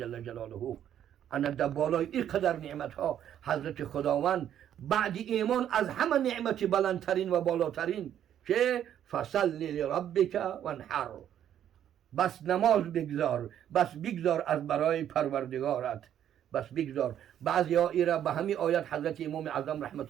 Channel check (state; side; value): quieter; left; 10.3 dB